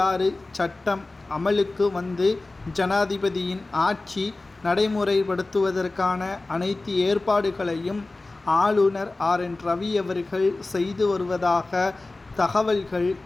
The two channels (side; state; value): right; quieter; 3.2 dB